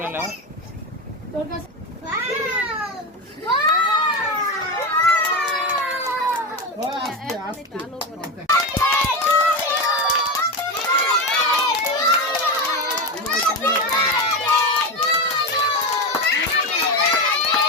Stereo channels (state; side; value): normal; both; correlation 0.17